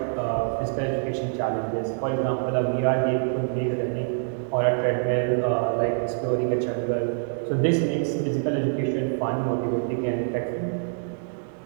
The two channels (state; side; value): silent; left; digital silence